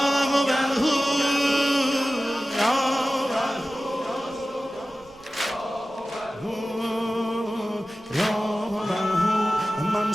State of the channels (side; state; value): right; noise; rumble, 29 dB below the sound